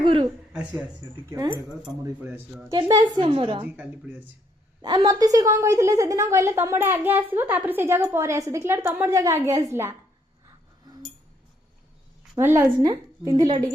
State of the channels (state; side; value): normal; both; correlation 0.71